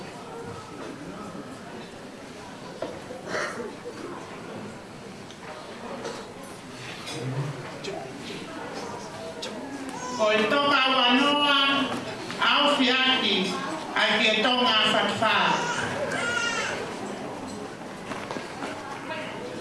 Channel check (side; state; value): both; identical; correlation 1.00